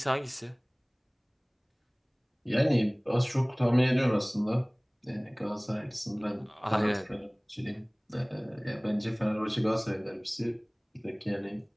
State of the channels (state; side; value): identical; both; correlation 1.00